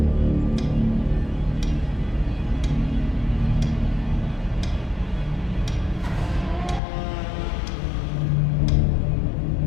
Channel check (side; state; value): right; drops out; at 6.8 s